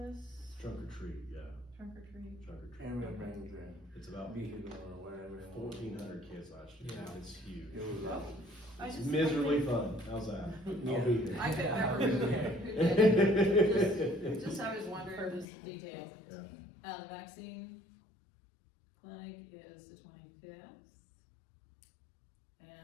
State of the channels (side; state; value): right; drops out; at 15.5 s